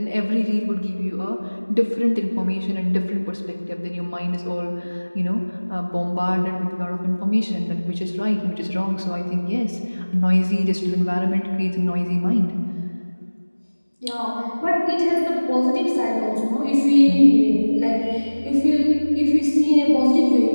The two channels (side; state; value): both; inverted; correlation -1.00